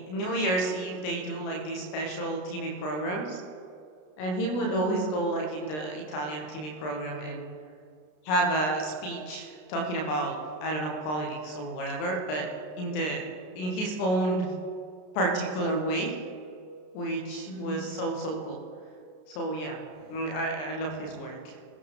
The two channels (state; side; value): late; right; 33 ms